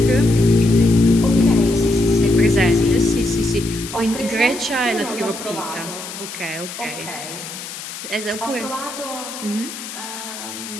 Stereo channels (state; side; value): noise; left; hiss, 10 dB below the sound